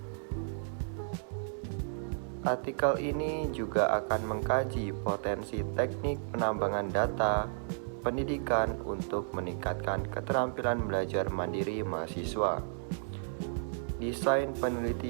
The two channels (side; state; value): left; silent; digital silence